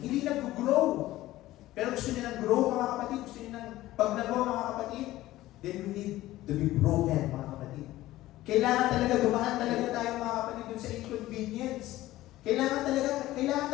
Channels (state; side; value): quieter; right; 16.1 dB